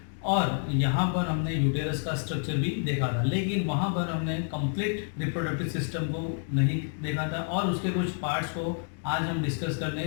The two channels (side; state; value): right; silent; 59 dB below the other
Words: और यहाँ पर हमने यूटेरस का स्ट्रक्चर भी देखा था। लेकिन वहाँ पर हमने कंप्लीट रिप्रोडक्टिव सिस्टम को नहीं देखा था और उसके कुछ पार्ट्स को आज हम डिस्कस